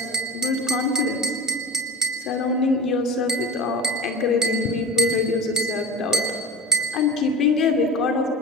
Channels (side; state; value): both; normal; correlation 0.32